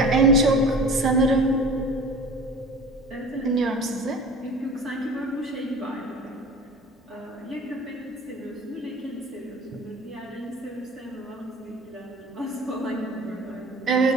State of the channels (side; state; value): both; normal; correlation 0.39